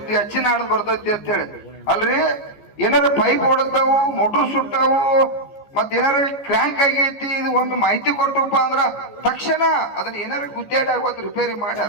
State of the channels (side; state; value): right; late; 14 ms